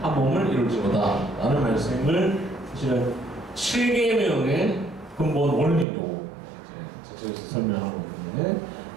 한 몸을 이룰지어다 라는 말씀을 사실은 7계명의 근본 원리로 저쪽에서 설명하고 있는데,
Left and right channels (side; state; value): left; drops out; at 5.9 s